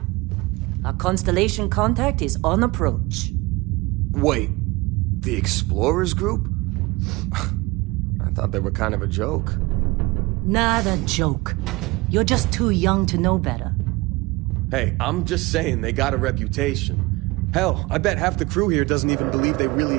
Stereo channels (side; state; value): left; quieter; 23.0 dB